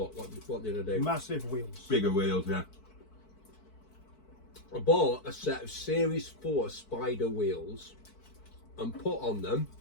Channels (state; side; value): late; right; 4.6 ms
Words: What did I do? Massive wheels. Bigger wheels, yeah. I bought a set of Series 4 Spider wheels and put on them